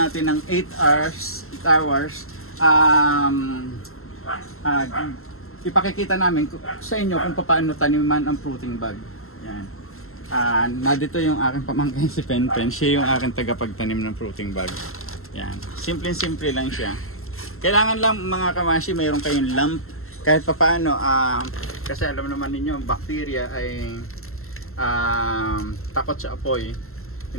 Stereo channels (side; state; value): right; late; 0.62 ms